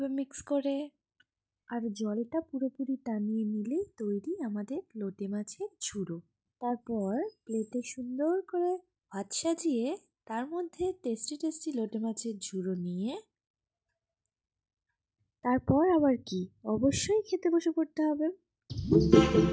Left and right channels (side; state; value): both; identical; correlation 1.00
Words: মিক্স করে আর জলটা পুরোপুরি টানিয়ে নিলেই তৈরি আমাদের লোটে মাছের ঝুড়ো। তারপর প্লেটে সুন্দর করে ভাত সাজিয়ে তার মধ্যে টেস্টি টেস্টি লোটে মাছের ঝুড়ো নিয়ে তারপর আবার কি, অবশ্যই খেতে বসে পড়তে হবে।